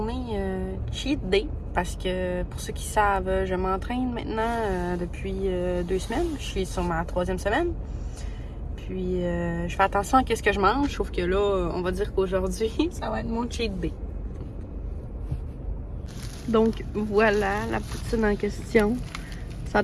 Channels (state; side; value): identical; both; correlation 1.00